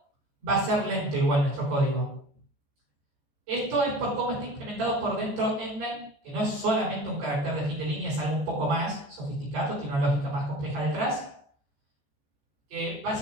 va a ser lento igual nuestro código. Esto es por cómo está implementado por dentro endline, que no es solamente un carácter de fin de línea, es algo un poco más sofisticado, tiene una lógica más compleja detrás, que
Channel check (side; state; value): left; late; 14 ms